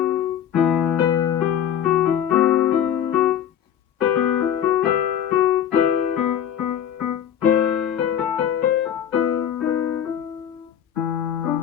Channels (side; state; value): right; quieter; 9.5 dB